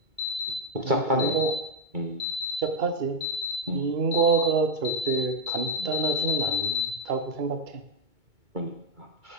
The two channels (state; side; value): late; left; 2.2 ms